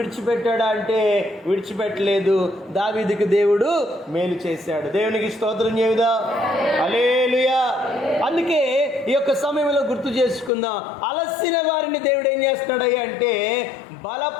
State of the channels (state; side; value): drops out; right; at 10.5 s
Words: అంటే విడిచిపెట్టలేదు. దావీదుకి దేవుడు మేలు చేశాడు. దేవునికి స్తోత్రం చెబుదా. హల్లెలూయా. అందుకే ఈ యొక్క సమయంలో గుర్తు చేసుకుందాం, అలసిన వారిని దేవుడు ఏం చేస్తున్నాడయ్యా అంటే